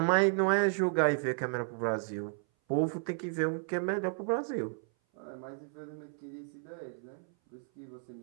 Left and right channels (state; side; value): silent; left; 56 dB below the other